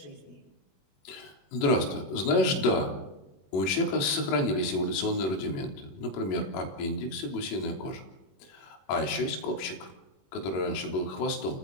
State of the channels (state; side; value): late; right; 21 ms